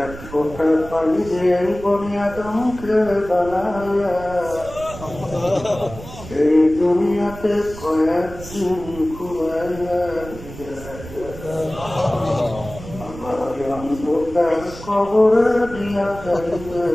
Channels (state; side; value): noise; right; rumble, 14 dB below the sound